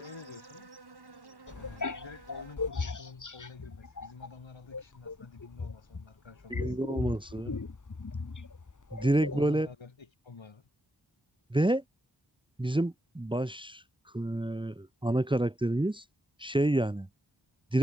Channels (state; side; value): normal; both; correlation 0.79